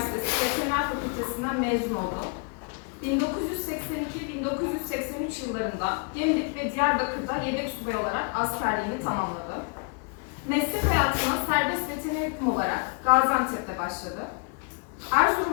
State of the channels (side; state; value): right; quieter; 36.2 dB